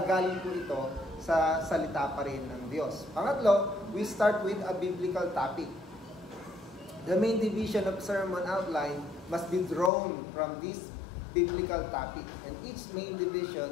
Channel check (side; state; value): right; drops out; at 9.9 s